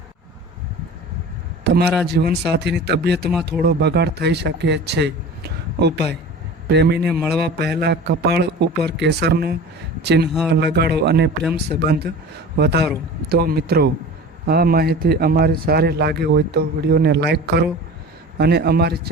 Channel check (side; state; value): both; normal; correlation 0.37